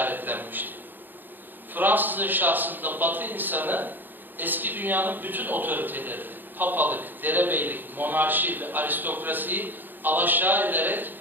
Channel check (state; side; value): late; left; 0.091 ms